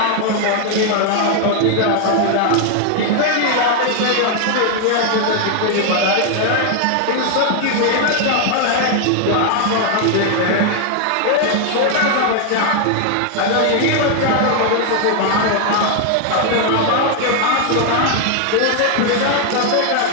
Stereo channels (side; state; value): both; different; correlation 0.00